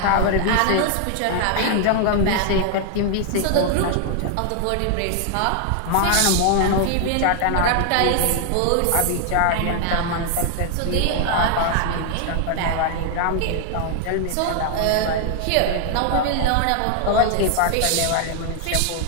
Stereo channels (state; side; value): different; both; correlation 0.00